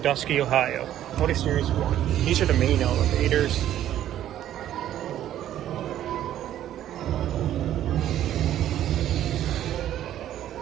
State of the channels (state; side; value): quieter; left; 11.9 dB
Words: Ohio. Otis Series 1. These are the main elevators.